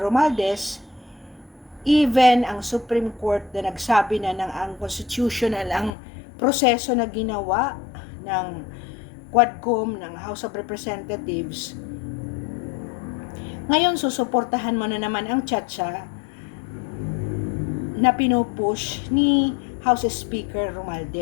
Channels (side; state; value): right; drops out; at 5.9 s